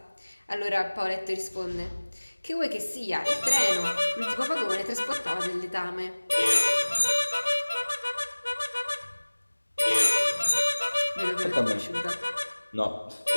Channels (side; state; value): both; inverted; correlation -1.00